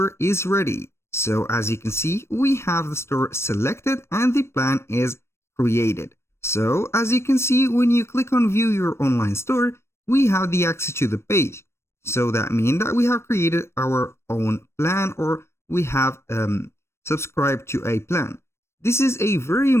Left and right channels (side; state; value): right; late; 0.13 ms